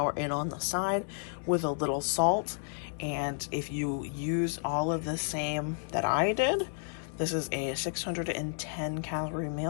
in on the side with a little salt. And if you use all of the same that I did, this is a 610 calorie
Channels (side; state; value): right; silent; 57 dB below the other